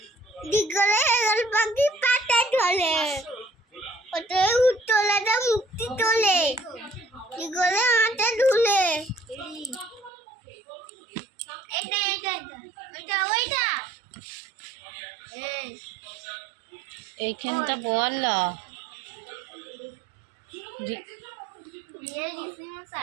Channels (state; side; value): drops out; left; at 10.1 s